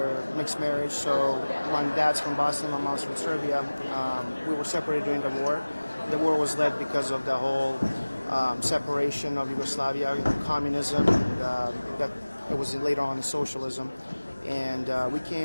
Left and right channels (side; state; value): both; inverted; correlation -1.00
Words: mixed marriage, so my dad's from Bosnia, my mom's from Serbia. We were separated during the war. The war was led because of the whole separation of Yugoslavia, communism, that it was later on socialism. And we